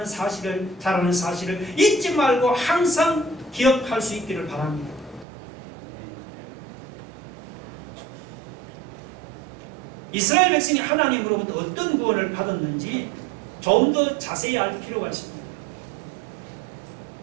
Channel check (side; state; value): left; drops out; at 5.2 s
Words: 사실을, 잘하는 사실을 잊지 말고 항상 기억할 수 있기를 바랍니다. 이스라엘 백성이 하나님으로부터 어떤 구원을 받았는지 좀 더 자세히 알 필요가 있습니다.